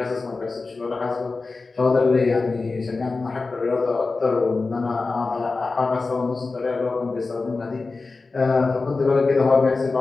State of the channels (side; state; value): right; quieter; 3.9 dB